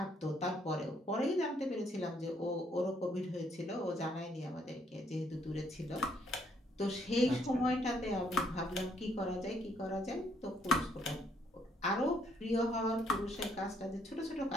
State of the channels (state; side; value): normal; both; correlation 0.69